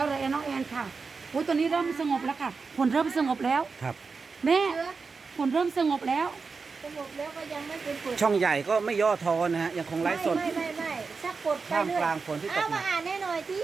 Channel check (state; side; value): quieter; left; 4.7 dB